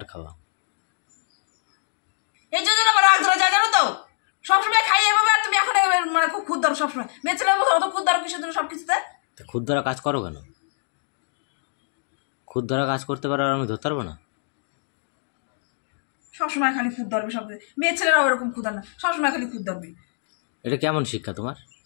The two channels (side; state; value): right; silent; digital silence